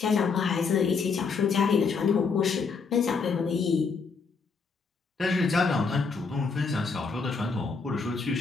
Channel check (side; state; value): right; quieter; 5.0 dB